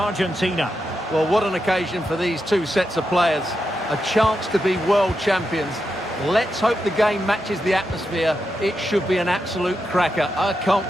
Well, what an occasion for these two sets of players. A chance to be world champions. Let's hope the game matches the atmosphere. It should be an absolute cracker. I can't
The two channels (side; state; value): both; normal; correlation 0.86